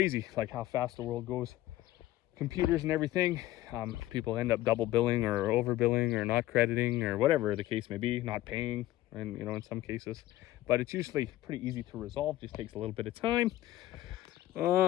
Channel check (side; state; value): right; quieter; 15.6 dB